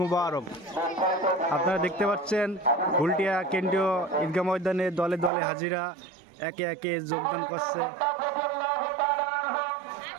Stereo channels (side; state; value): left; drops out; at 5.3 s